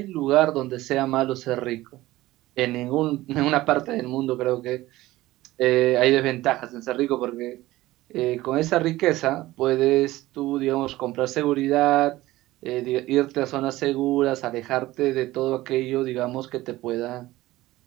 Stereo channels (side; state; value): left; quieter; 17.3 dB